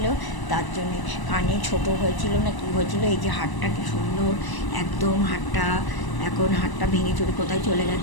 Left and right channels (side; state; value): right; late; 1.0 ms